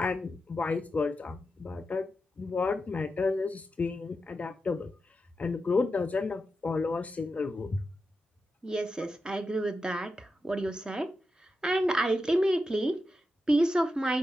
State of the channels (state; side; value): normal; both; correlation 0.89